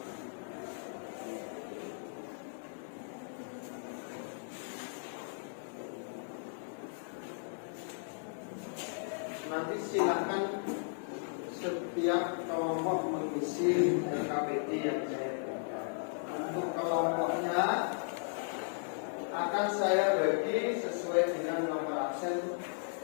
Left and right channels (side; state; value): right; silent; 54 dB below the other